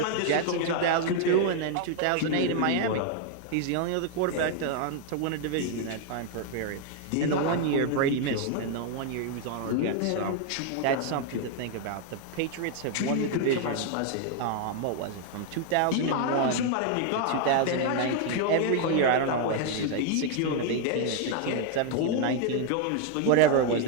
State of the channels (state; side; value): different; both; correlation 0.00